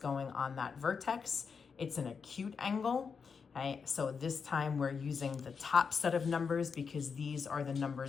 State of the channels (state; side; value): quieter; right; 5.7 dB